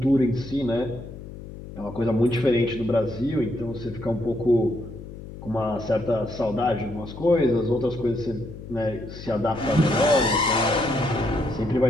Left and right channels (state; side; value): noise; left; hum, 13 dB below the sound